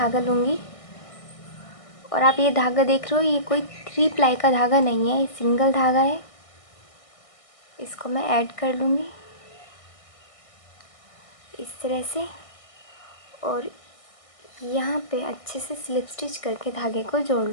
लूँगी, और आप ये धागा देख रहे हो, ये कोई 3 प्लाई का धागा नहीं है, ये सिंगल धागा है। इसको मैं ऐड कर लूँगी इस तरह से, और यहाँ पे अच्छे से स्लिप स्टिच करके धागे को जोड़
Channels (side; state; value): right; late; 1.6 ms